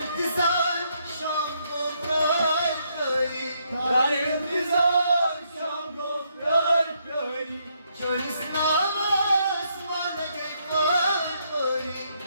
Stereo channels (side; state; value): both; inverted; correlation -0.75